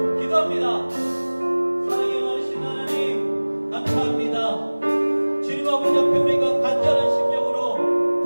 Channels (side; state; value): both; inverted; correlation -1.00